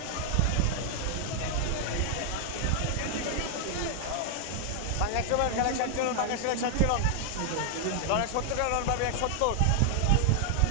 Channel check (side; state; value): both; different; correlation 0.00